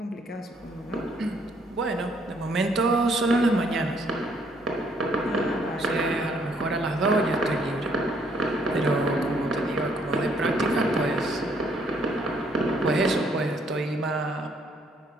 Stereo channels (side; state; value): both; normal; correlation 0.67